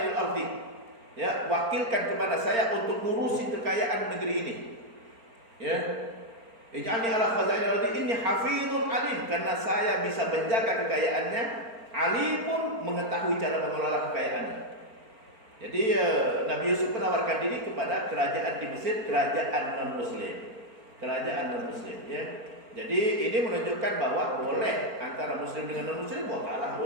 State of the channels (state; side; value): late; left; 4.4 ms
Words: ardi, ya, wakilkan kepada saya untuk ngurusin kekayaan negeri ini, ya. Ij'alni ala khazainil ardi inni hafizun alim, karena saya bisa menjaga kekayaannya, alimun, mengetahui cara mengelola kekayaannya. Jadi Nabi Yusuf menawarkan diri kepada kerajaan di Mesir, kerajaan non-Muslim, ya. Jadi ini menunjukkan bahwa boleh antara Muslim dengan non-Muslim wakalah